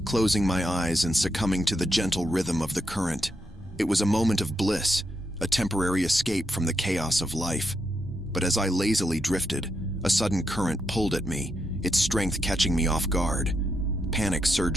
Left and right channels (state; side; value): normal; both; correlation 0.82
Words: closing my eyes and succumbing to the gentle rhythm of the current. It was a moment of bliss, a temporary escape from the chaos of life. But as I lazily drifted, a sudden current pulled at me, its strength catching me off guard. Panic